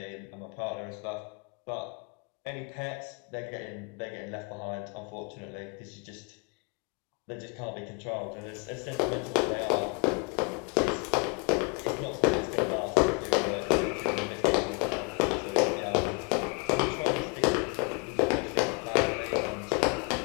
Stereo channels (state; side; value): quieter; right; 31.8 dB